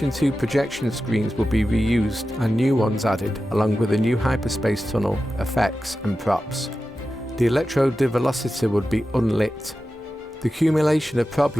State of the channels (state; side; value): normal; both; correlation 0.93